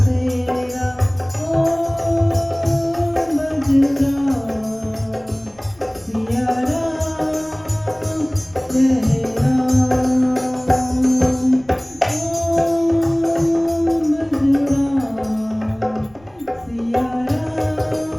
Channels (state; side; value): noise; left; rumble, 30 dB below the sound